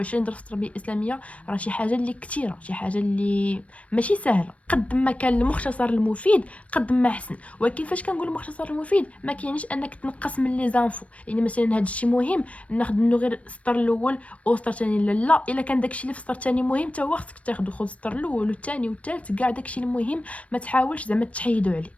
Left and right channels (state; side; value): late; right; 0.064 ms